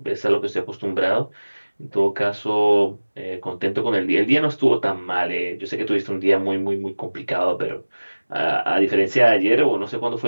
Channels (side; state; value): both; inverted; correlation -1.00